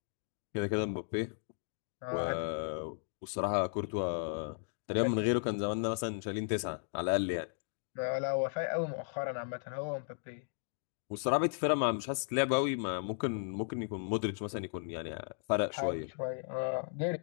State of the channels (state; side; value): silent; right; digital silence